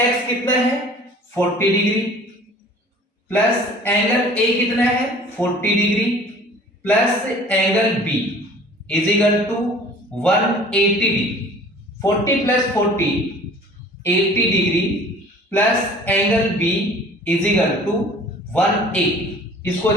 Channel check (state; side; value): normal; both; correlation 0.48